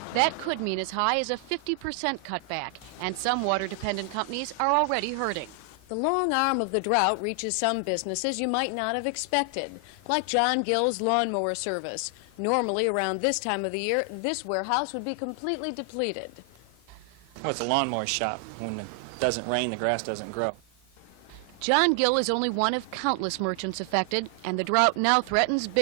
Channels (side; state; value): left; late; 4.6 ms